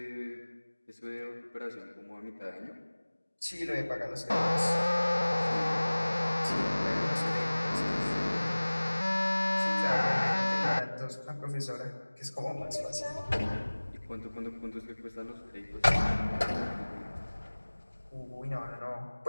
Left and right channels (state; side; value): inverted; both; correlation -1.00